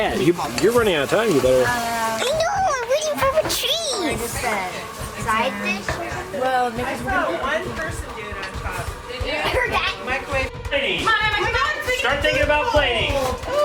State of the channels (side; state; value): both; identical; correlation 1.00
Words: You're running out of time. You better. I know. I'm waiting for the cheese. Side dish. Well, because we're gonna one person doing on top. Heard that. Microwave. Plating. Start thinking about plating.